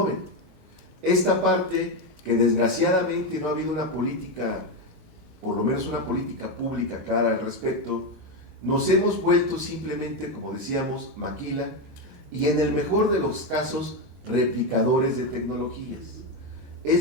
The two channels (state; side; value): normal; both; correlation 0.10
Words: Esta parte que desgraciadamente no ha habido una política, por lo menos una política pública clara al respecto, nos hemos vuelto simplemente, como decíamos, maquila, y en el mejor de los casos, replicadores de tecnologías.